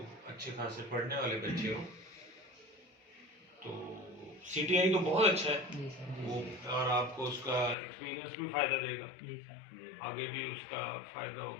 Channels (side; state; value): right; drops out; at 7.8 s